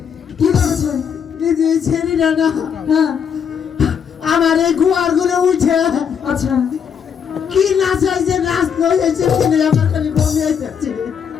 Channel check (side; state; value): right; quieter; 7.4 dB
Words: কি করেছে এই যে ছেড়ি না না হ্যাঁ আমার এই গুয়ার ঘুরে উঠে আচ্ছা কি নাচ হয়েছে নাচ হয়েছে কিনে আমার খালি বমি আইতেছে